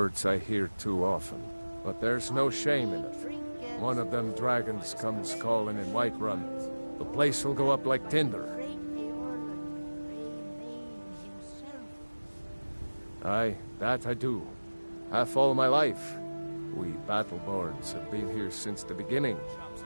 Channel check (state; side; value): inverted; both; correlation -1.00